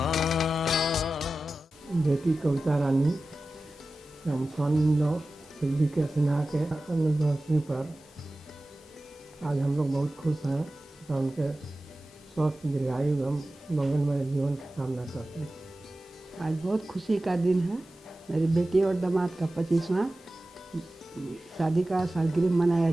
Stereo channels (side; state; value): both; normal; correlation 0.95